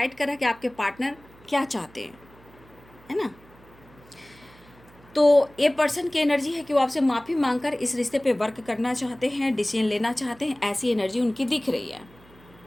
कर रहा है कि आपके पार्टनर क्या चाहते हैं, है ना। तो ये पर्सन की एनर्जी है कि वो आपसे माफ़ी मांगकर इस रिश्ते पे वर्क करना चाहते हैं, डिसीजन लेना चाहते हैं, ऐसी एनर्जी उनकी दिख रही है।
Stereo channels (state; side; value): noise; right; hum, 25 dB below the sound